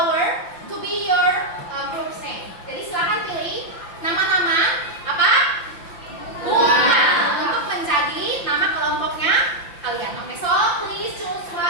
to be your group's name. Jadi silakan pilih nama-nama apa? Bunga untuk menjadi nama kelompoknya kalian. Oke, so please choose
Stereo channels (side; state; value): right; late; 5.8 ms